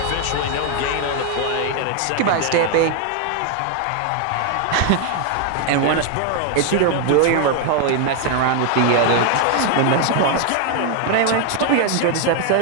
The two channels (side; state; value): both; different; correlation 0.00